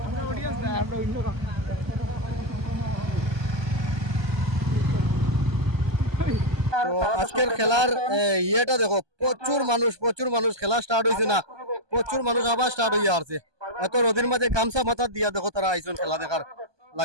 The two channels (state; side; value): late; left; 1.2 ms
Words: তো আজকের খেলার ইয়েটা দেখো, প্রচুর মানুষ খেলা স্টার্ট হয়েছে না, প্রচুর মানুষ আবার স্টার্ট হইয়া আসছে। এত রোদের মাঝে গামছা মাথা দিয়া দেখো তারা আইসন খেলা দেখার